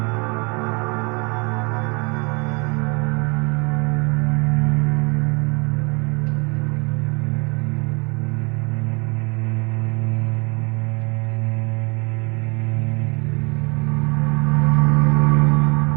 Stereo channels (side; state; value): left; quieter; 31.3 dB